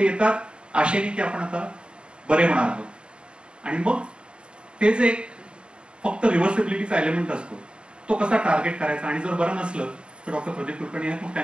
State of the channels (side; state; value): left; late; 0.053 ms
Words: येतात आशेने की आपण आता बरे होणार आहोत आणि मग ते जे फक्त रिव्हर्सिबिलिटीचा एलिमेंट असतो तो कसा टार्गेट करायचा आणि जर बरं नसलं तर डॉक्टर प्रदीप कुलकर्णी आहेत, मग